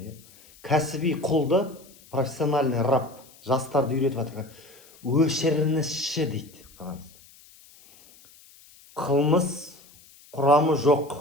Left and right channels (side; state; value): left; noise; hiss, 25 dB below the sound